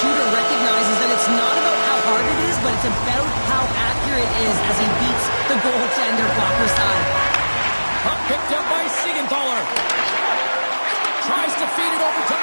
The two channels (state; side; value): inverted; both; correlation -1.00